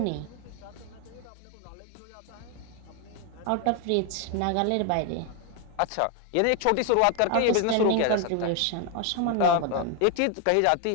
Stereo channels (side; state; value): both; different; correlation 0.01